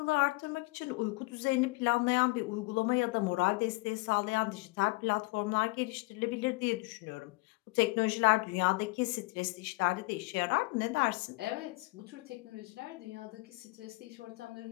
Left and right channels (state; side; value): quieter; right; 24.6 dB